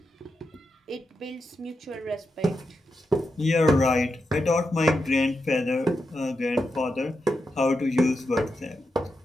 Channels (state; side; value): normal; both; correlation 0.87